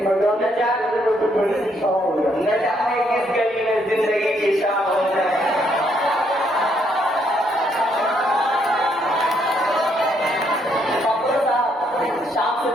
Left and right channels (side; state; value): both; normal; correlation 0.72